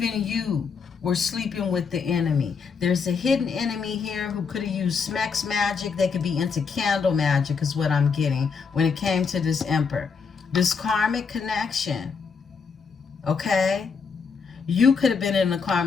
you were sleeping with the enemy. There's a hidden enemy here who could have used Smex magic. They could be into candle magic is what I'm getting when it came to this Emperor. This karmic connection, okay? You could have been in a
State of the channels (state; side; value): quieter; right; 5.6 dB